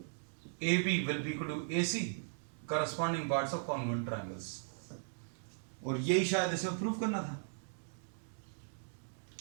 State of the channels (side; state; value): left; silent; digital silence